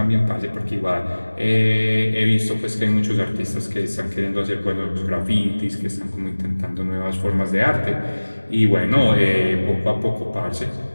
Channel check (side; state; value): both; inverted; correlation -1.00